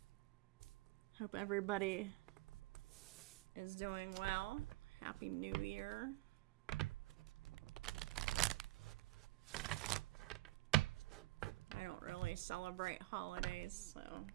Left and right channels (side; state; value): left; quieter; 19.5 dB